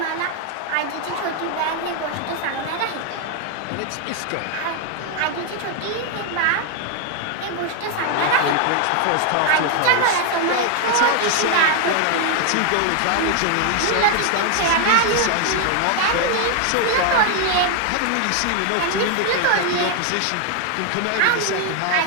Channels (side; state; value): both; different; correlation 0.00